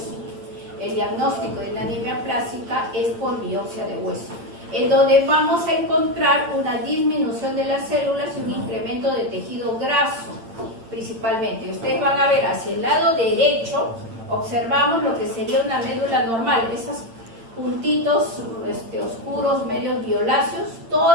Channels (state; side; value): late; left; 8.8 ms